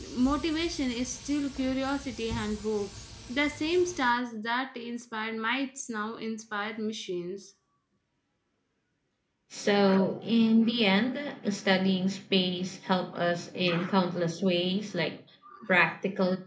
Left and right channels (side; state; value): both; identical; correlation 1.00